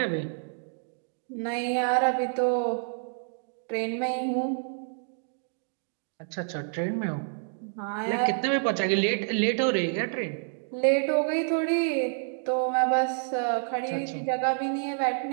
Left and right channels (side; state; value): left; silent; digital silence